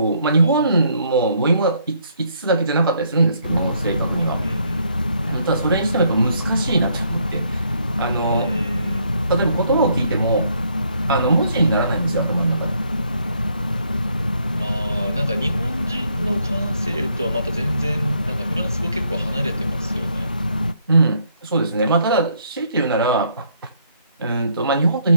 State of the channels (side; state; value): both; inverted; correlation -0.70